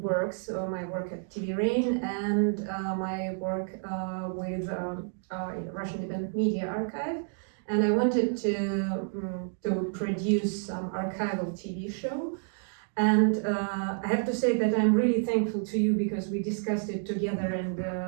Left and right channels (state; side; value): silent; left; 58 dB below the other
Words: so my work at TV Rain and my work with Russian Independent Media Archive. And I wanted to produce some archival TV show. And I have to say that I'm really thankful to you because we discussed it together and